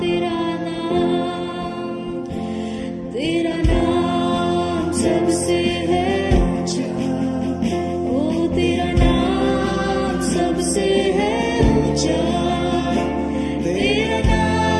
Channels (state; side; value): identical; both; correlation 1.00